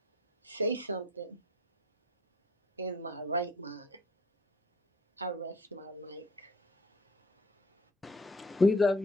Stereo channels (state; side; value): normal; both; correlation 0.52